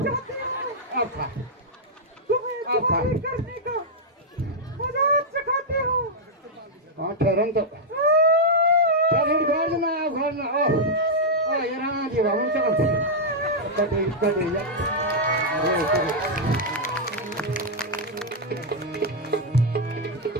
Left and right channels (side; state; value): both; normal; correlation -0.04